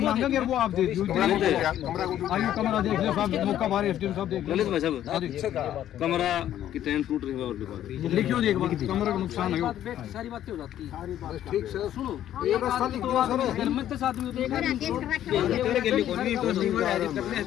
वो आप दे दीजिए। आइए कमरा देख लो साहब, मौका बारे एसडीएम साहब देख लो। कमरा की टैंक टूट रही है और लिखियो जी एक बार, कमरे का नुकसान है वो। सारी बातें हो जाती हैं। ठीक से सुनो, एक रास्ता लिख दो सर, घर में 10 आदमी होते हैं,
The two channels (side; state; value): right; quieter; 11.7 dB